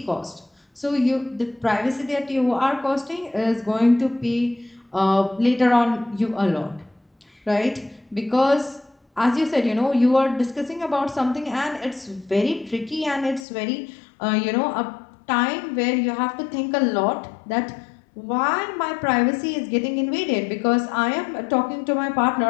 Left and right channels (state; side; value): drops out; right; at 13.5 s